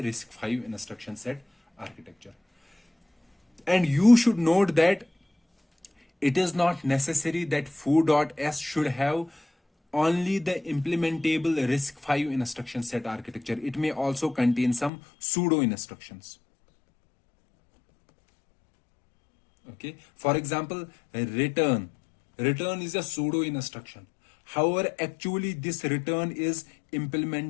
RISC-V instruction set architecture. And you should note that it is not necessary that foo.s should have only the implementable RISC-V instruction set architecture. It may also contain some pseudo instructions. Okay, for example, return is a pseudo instruction. However, actually this return is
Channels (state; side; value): drops out; right; at 14.9 s